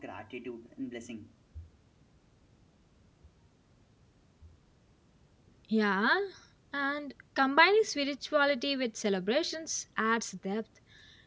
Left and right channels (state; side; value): identical; both; correlation 1.00